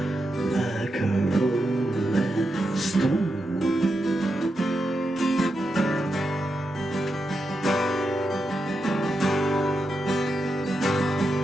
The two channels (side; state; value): both; normal; correlation 0.86